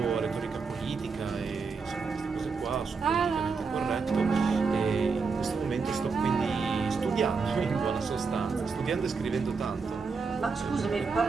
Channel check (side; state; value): left; quieter; 4.9 dB